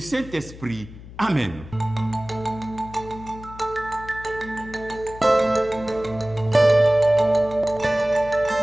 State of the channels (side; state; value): left; noise; hum, 16 dB below the sound